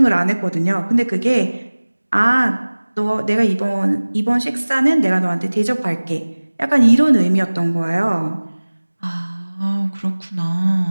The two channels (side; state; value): both; inverted; correlation -1.00